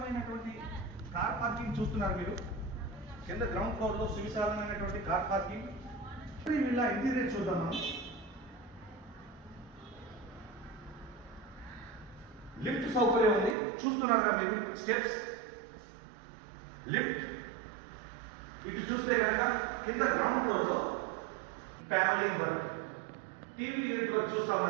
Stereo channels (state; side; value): drops out; left; at 13.6 s